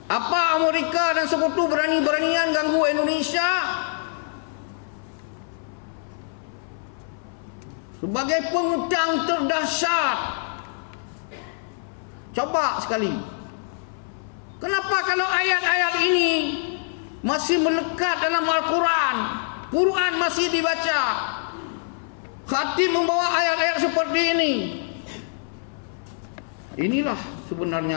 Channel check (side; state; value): right; silent; 58 dB below the other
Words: Apa Amerika dan sekutu berani-beranian ganggu Indonesia? Sebagai pengutang terdahsyat, coba sekali. Kenapa kalau ayat-ayat ini masih melekat dalam Al-Quran, Quran masih dibaca, khatib membawa ayat-ayat seperti ini? Inilah